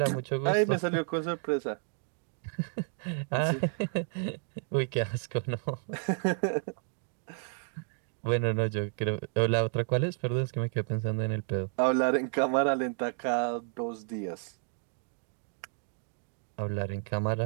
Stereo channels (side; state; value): left; silent; 57 dB below the other